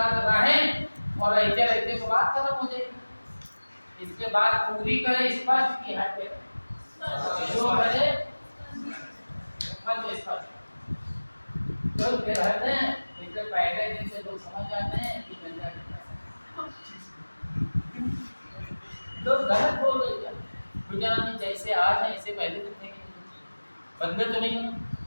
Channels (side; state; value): both; inverted; correlation -1.00